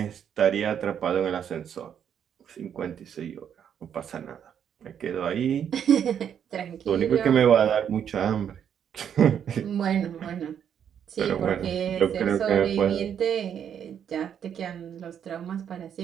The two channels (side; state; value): left; quieter; 8.6 dB